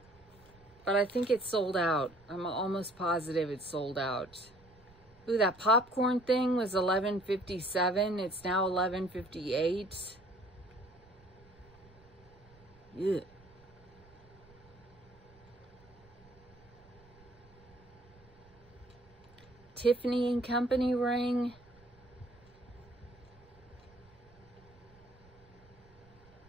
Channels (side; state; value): right; noise; rumble, 26 dB below the sound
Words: But I think it's sold out. I'm almost positive it's sold out. Ooh, that popcorn thing was $11.57. It's now $11.58. Yeah. Tiffany and Company ring.